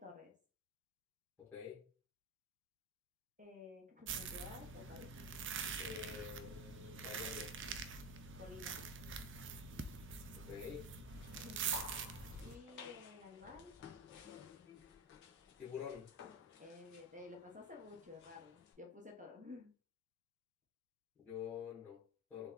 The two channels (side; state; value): both; normal; correlation 0.19